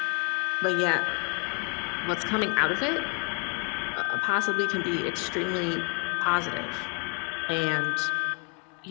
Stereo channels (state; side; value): quieter; right; 36.6 dB